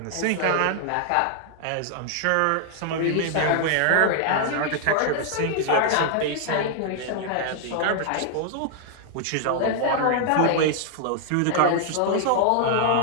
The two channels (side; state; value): both; different; correlation -0.01